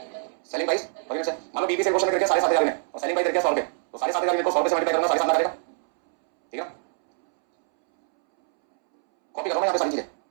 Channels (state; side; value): silent; left; 62 dB below the other